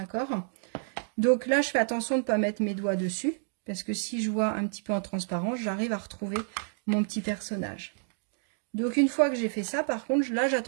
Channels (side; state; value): left; silent; digital silence